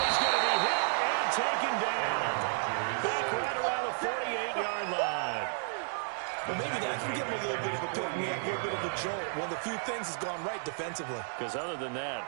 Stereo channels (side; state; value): left; silent; digital silence